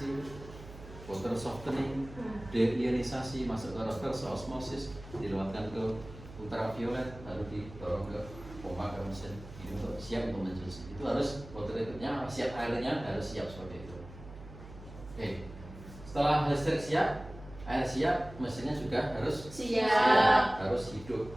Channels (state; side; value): noise; right; hum, 16 dB below the sound